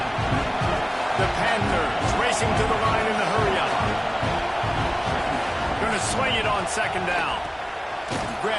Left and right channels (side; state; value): both; identical; correlation 1.00